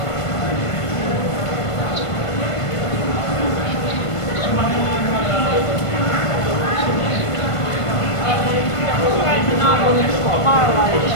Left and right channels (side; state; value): right; late; 1.5 ms